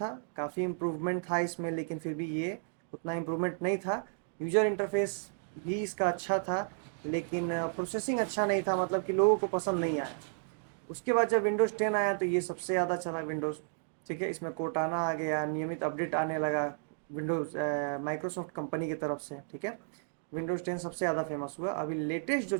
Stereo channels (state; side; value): silent; left; digital silence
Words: काफ़ी इम्प्रूवमेंट था इसमें, लेकिन फिर भी ये उतना इम्प्रूवमेंट नहीं था। यूज़र इंटरफेस भी इसका अच्छा था लेकिन प्रोसेसिंग अच्छा नहीं था, मतलब कि लोगों को पसंद नहीं आया। उसके बाद जब विंडोज़ 10 आया तो ये सबसे ज़्यादा चला विंडोज़, ठीक है। इसमें कोर्टाना आ गया, नियमित अपडेट आने लगा विंडोज़ माइक्रोसॉफ्ट कंपनी की तरफ से, ठीक है। विंडोज़ 10 सबसे ज़्यादा फेमस हुआ। अभी लेटेस्ट जो